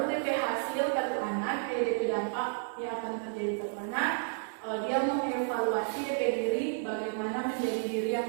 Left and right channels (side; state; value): left; silent; digital silence